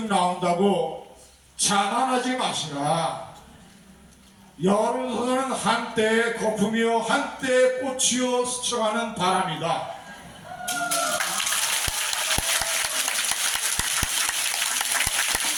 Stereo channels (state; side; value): identical; both; correlation 1.00